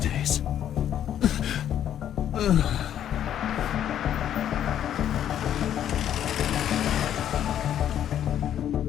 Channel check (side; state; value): right; quieter; 10.4 dB